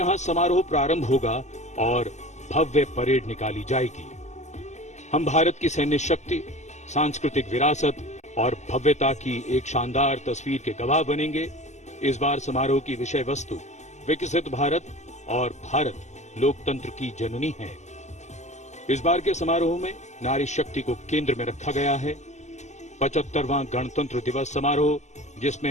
समारोह प्रारंभ होगा और भव्य परेड निकाली जाएगी। हम भारत की सैन्य शक्ति, सांस्कृतिक विरासत और भव्यता की एक शानदार तस्वीर के गवाह बनेंगे। इस बार समारोह की विषय वस्तु विकसित भारत और भारत लोकतंत्र की जननी है। इस बार के समारोह में नारी शक्ति को केंद्र में रखा गया है। 75वां गणतंत्र दिवस समारोह,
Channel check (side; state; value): right; late; 0.34 ms